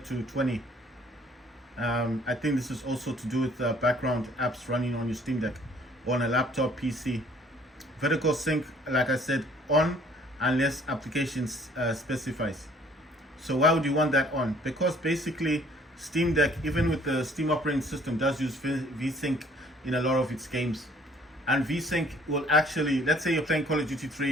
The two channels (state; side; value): normal; both; correlation 0.58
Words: to 20. I think this is also to do with background apps running on your Steam Deck or on a laptop PC. Vertical sync, like I said, on unless applications specifies. So why would you want that on? Because basically Steam Deck, even with the Steam operating system, does use VSync in a lot of its games. And VSync will actually, let's say you're playing Call of Duty